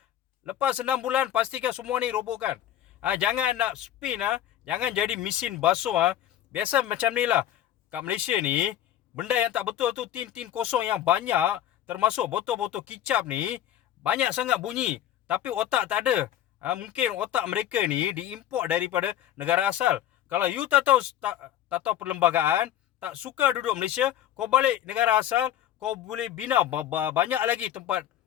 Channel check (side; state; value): right; quieter; 11.7 dB